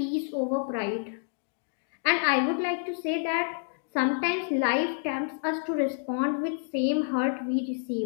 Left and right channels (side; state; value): right; silent; 59 dB below the other